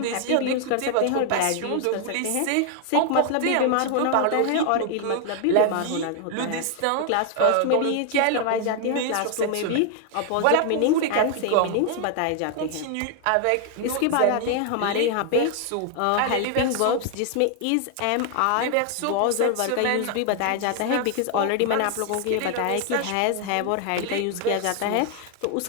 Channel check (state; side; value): different; both; correlation 0.00